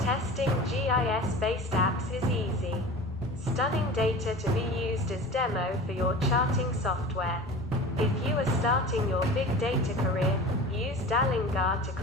GIS-based apps is easy. Stunning data to be used as demo for your charting software. If you are starting your big data career, use Dalinga to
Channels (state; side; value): normal; both; correlation 0.36